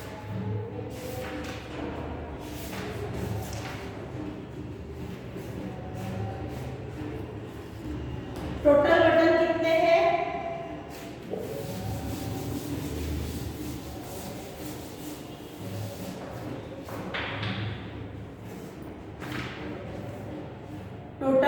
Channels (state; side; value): identical; both; correlation 1.00